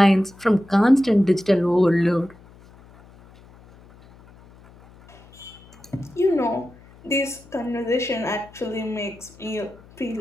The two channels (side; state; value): left; noise; hum, 25 dB below the sound